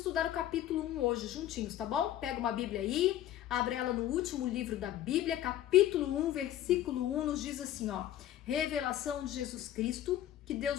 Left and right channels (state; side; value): quieter; right; 12.5 dB